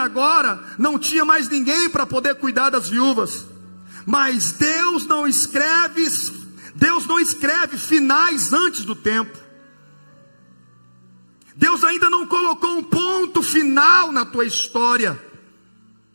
não tinha mais ninguém para poder cuidar das viúvas. Mas Deus não escreve finais antes do tempo. Deus ainda não colocou um ponto final na tua história.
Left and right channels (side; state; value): both; inverted; correlation -1.00